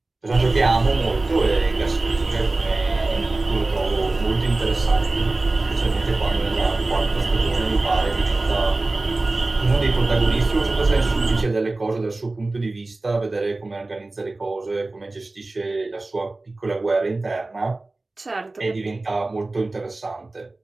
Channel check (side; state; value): left; quieter; 3.1 dB